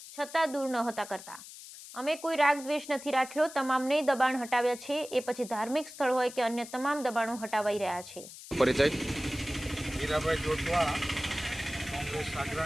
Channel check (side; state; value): left; noise; hiss, 15 dB below the sound